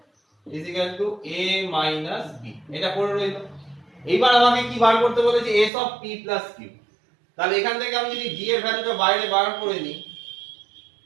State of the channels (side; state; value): left; drops out; at 5.7 s